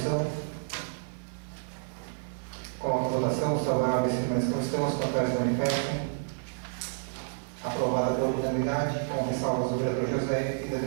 Coloca a votação. Os favoráveis permaneçam como estão, os contrários manifestem. Aprovada pela unanimidade, com ressalvas do vereador José e da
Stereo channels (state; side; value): silent; left; digital silence